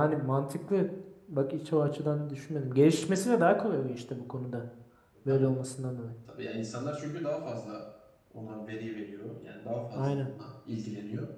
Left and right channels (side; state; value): both; identical; correlation 1.00